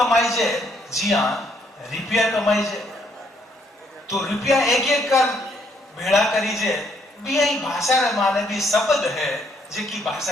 जे, जी हाँ रुपया कमाई जे, तो रुपया एक एक कर भेड़ा करी जे, भी ही भाषा रे माने भी शब्द है जेकी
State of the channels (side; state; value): both; normal; correlation 0.70